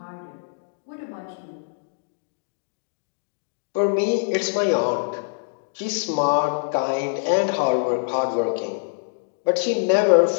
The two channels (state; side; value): silent; right; digital silence